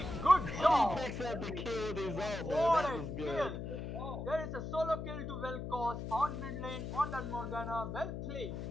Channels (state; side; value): noise; left; hum, 6 dB below the sound